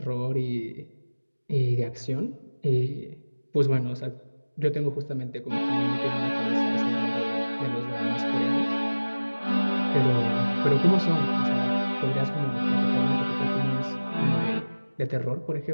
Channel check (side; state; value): both; inverted; correlation -1.00